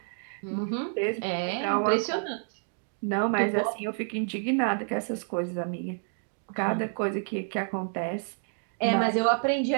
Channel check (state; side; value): silent; left; 58 dB below the other